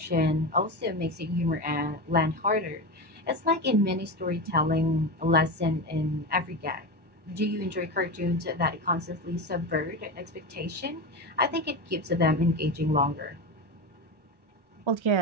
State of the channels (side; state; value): left; late; 1.1 ms